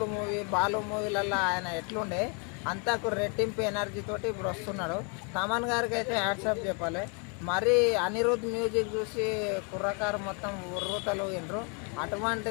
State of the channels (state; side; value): quieter; right; 35.9 dB